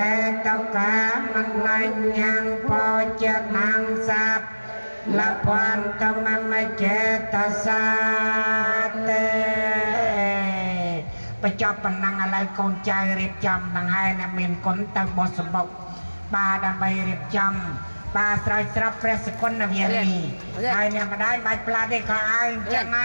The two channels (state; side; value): inverted; both; correlation -1.00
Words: េតកាមណញ្ញងពោចនងសាប់លពន្តមមចេតសាទេបញ្ចប់ប៉ុណ្ណឹងឥឡូវកូនចៅរៀបចំដង្ហែអ្នកមានគុណទៅបោះសម្បុកបាទដើម្បីរៀបចំបាទស្រោចស្រពព្រះសគុណវិរិយហើយអ្នកម្ដាយបាច់ផ្លាត់ទេក៏ឲ្យចឹងដ